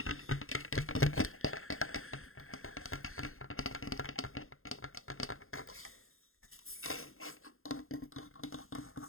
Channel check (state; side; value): late; right; 0.61 ms